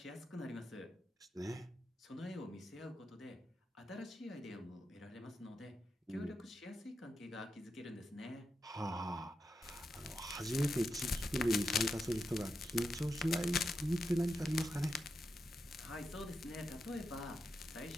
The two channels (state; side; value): normal; both; correlation 0.86